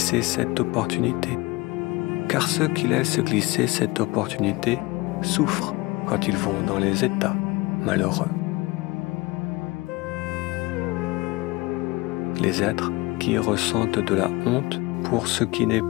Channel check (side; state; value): right; quieter; 22.8 dB